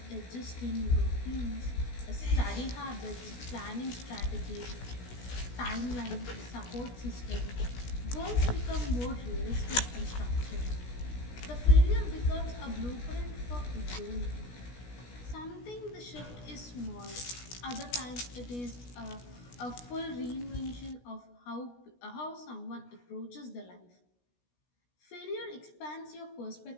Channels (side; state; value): right; late; 16 ms